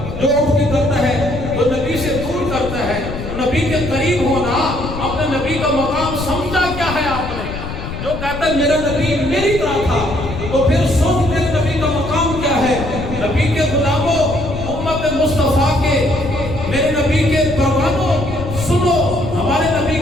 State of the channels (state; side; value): noise; left; rumble, 8 dB below the sound